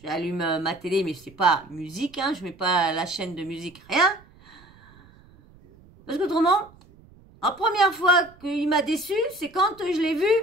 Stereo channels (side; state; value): right; noise; rumble, 26 dB below the sound